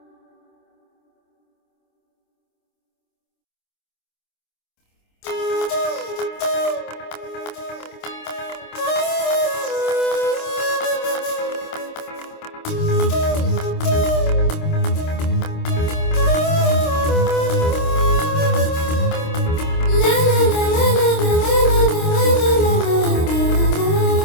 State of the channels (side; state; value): right; late; 26 ms